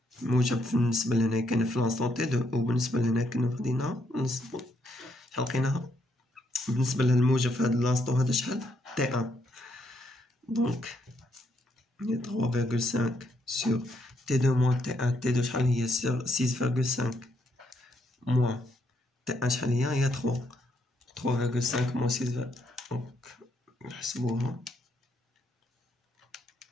موجب بالنسبة لهنا كان في لانستون تي دو، وبالنسبة لهنا كنا خديناها نصبو شحال لقيناها بالنسبة للموجة في هاد لانستون هذا شحال تي ان، دونك هي 3.5 sur T2 moins T1. T2 شحال هي 6.5 moins T1 شحال هي 3. 3.5 moins 6. دونك نحسبوها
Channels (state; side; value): normal; both; correlation 0.75